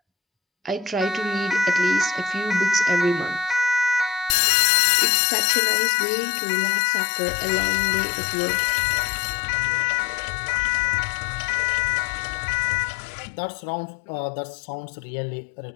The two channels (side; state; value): right; drops out; at 4.4 s